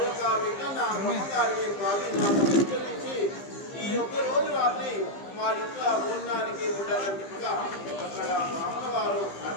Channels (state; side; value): late; right; 15 ms